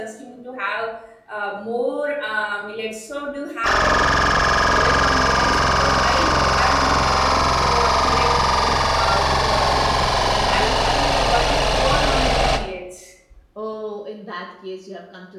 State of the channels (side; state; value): both; identical; correlation 1.00